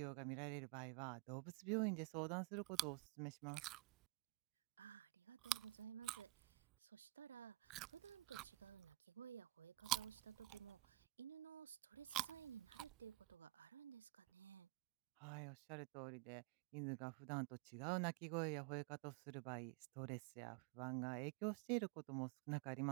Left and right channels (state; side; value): quieter; left; 20.2 dB